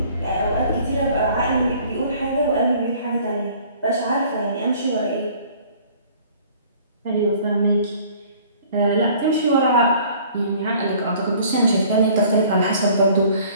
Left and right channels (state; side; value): inverted; both; correlation -0.53